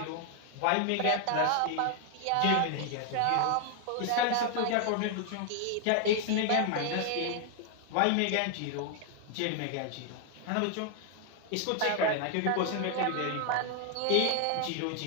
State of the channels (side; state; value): both; different; correlation 0.00